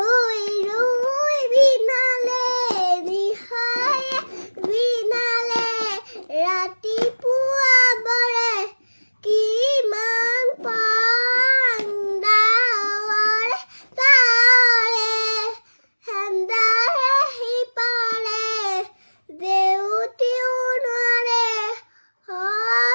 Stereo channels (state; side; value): inverted; both; correlation -1.00